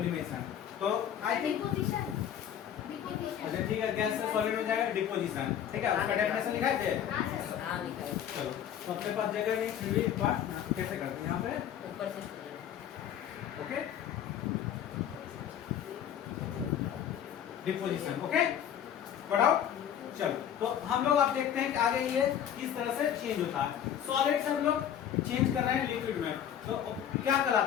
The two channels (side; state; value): right; quieter; 9.7 dB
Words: तो आई थिंक अच्छा ठीक है, गैस से सॉलिड में जाएगा डिपोजिशन। ठीक है, उसका डेफिनेशन लिखाए थे। हाँ लिखा है। चलो, तो अपने पास जगह नहीं, फिर भी एक बार कैसे करते हैं यहाँ पे, ऊपर से ओके, डिपोजिशन। ओके, बढ़ाओ। चलो, तो हम लोग अब देखते हैं कि आगे ये किस तरह से चेंज होता है। सॉलिड से हम लोग चेंज कर रहे हैं लिक्विड में, तो क्या